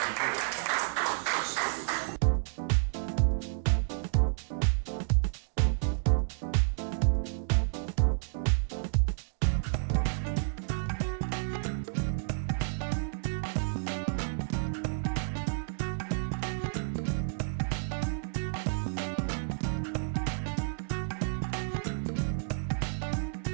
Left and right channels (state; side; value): silent; left; digital silence